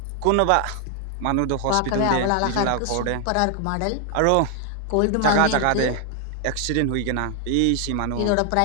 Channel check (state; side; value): different; both; correlation 0.00